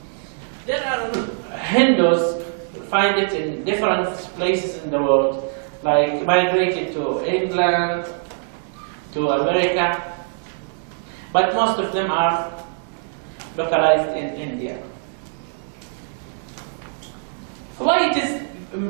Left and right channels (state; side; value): silent; left; digital silence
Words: There are Hindus, you find it in different places in the world, like migrated to England, to America, but most of them are localized in India. Why it is